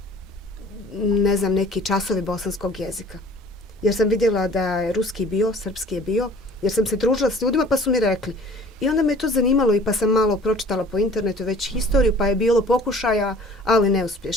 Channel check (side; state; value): both; normal; correlation 0.49